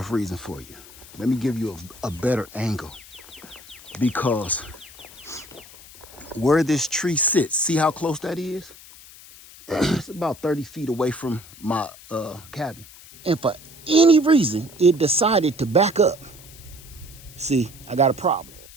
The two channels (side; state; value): left; noise; hiss, 20 dB below the sound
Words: reason for you. Let me give you a better angle. Because where this tree sits, see how close that is? It's about 30 feet away from my cabin. And for any reason, it decided to back up. See, I got a problem.